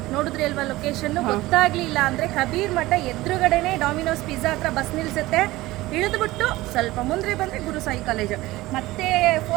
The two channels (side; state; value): left; quieter; 18.5 dB